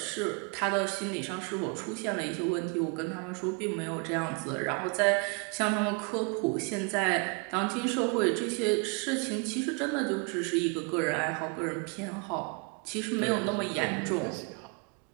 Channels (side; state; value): left; quieter; 34.1 dB